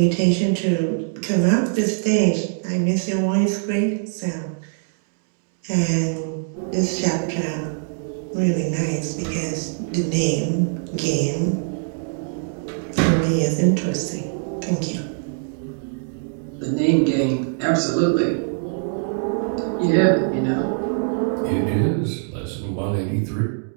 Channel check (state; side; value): silent; left; digital silence